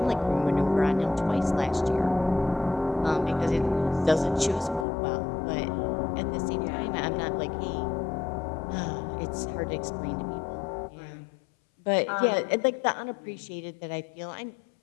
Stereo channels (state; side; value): drops out; right; at 4.9 s